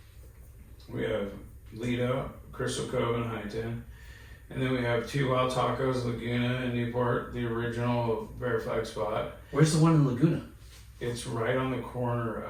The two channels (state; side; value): identical; both; correlation 1.00